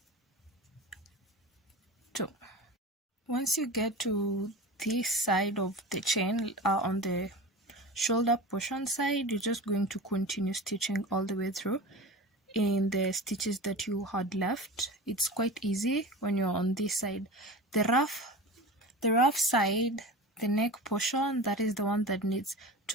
2. Once you get to this side of the chain, on the shoulder portion side, you're just going to continue stitching all the way through in the stitches that you had left. It's quite easy when you're on this side. The rough side, the neck portion, that is the one that needs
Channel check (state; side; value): normal; both; correlation 0.32